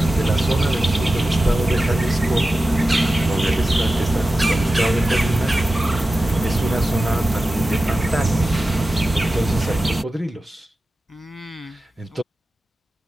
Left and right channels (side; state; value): both; normal; correlation 0.94